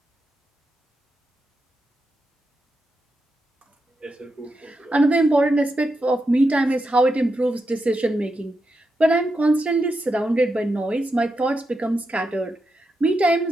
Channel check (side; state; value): both; normal; correlation 0.86